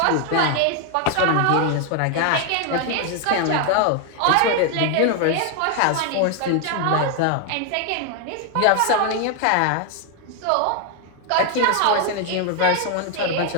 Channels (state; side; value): different; both; correlation 0.00